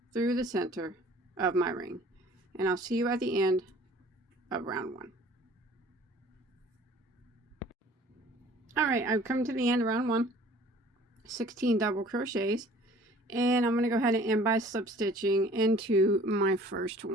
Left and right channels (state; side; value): normal; both; correlation 0.51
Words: through the center of my ring. And I'll see you at the end of round 1. Alright, I've come to the end of round 1. 16 double crochets, and I'm going to go ahead and end by slip stitching into my first